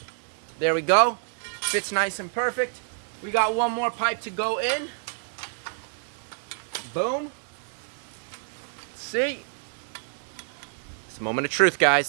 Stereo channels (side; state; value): left; silent; 60 dB below the other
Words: There we go. Fits nice and perfect. We got 1 more pipe to go in. Boom. See? It's a moment of truth,